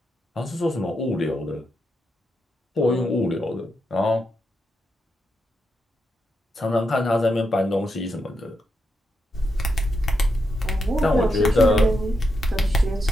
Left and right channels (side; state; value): both; normal; correlation 0.84